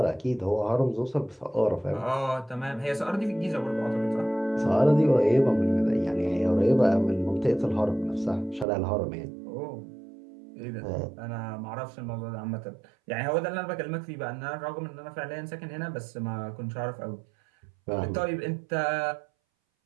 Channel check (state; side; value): drops out; left; at 8.7 s